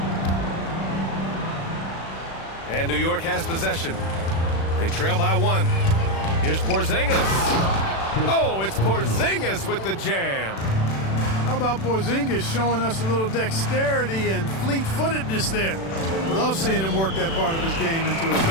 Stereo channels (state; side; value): late; right; 36 ms